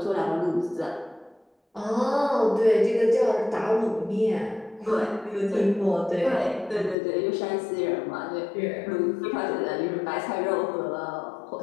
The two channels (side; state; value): right; drops out; at 7.0 s